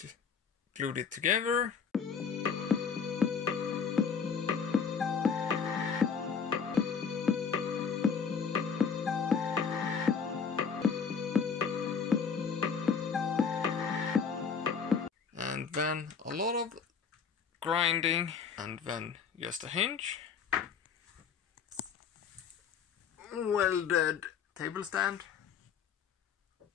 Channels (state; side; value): quieter; right; 6.3 dB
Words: glued it together. And then a lot of grinding, and then just a hinge. Welded table stand.